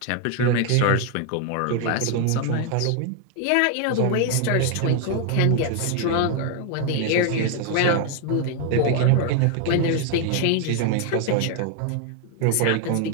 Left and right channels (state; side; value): different; both; correlation 0.01